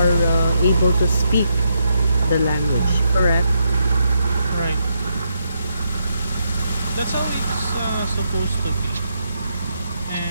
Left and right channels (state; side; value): inverted; both; correlation -0.80